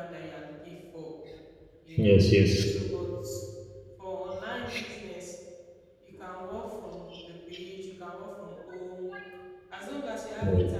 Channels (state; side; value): identical; both; correlation 1.00